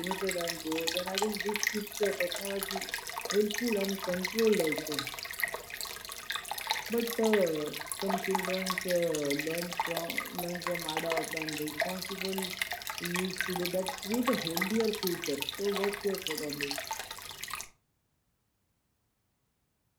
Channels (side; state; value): both; identical; correlation 1.00